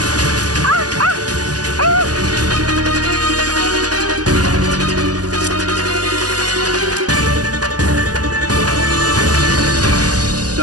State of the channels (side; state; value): left; late; 0.68 ms